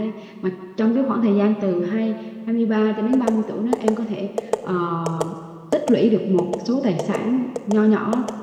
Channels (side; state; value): both; identical; correlation 1.00